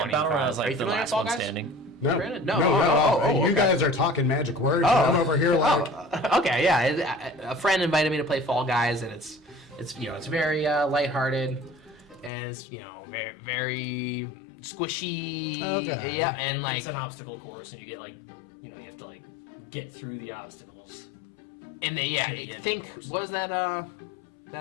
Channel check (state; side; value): drops out; right; at 12.3 s